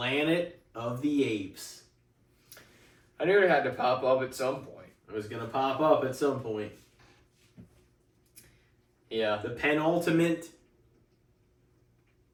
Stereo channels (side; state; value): both; identical; correlation 1.00